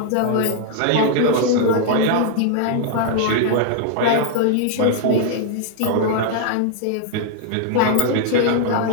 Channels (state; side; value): different; both; correlation 0.00